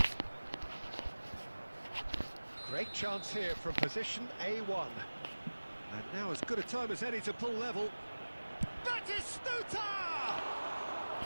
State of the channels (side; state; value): both; inverted; correlation -1.00